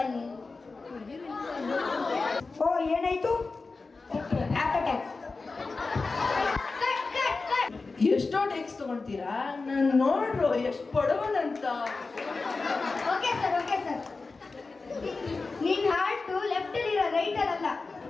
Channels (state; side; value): quieter; right; 3.9 dB